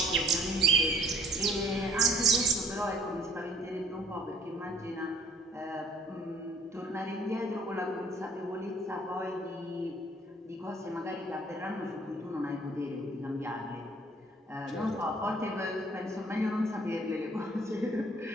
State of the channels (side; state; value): both; normal; correlation 0.57